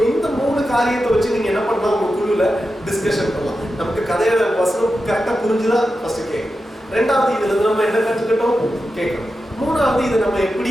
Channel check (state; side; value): normal; both; correlation 0.90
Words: இந்த 3 காரியத்தை வச்சு நீங்க என்ன பண்ணலாம், உங்க குழுல டிஸ்கஷன் பண்ணலாம். நமக்கு கதையோட வசனம் கரெக்டா புரிஞ்சுதா ஃபர்ஸ்ட் கேட்கணும், ரெண்டாவது இதுல இருந்து நம்ம என்ன கற்றுக்கிட்டோம் கேட்கணும், மூணாவது இதை நம்ம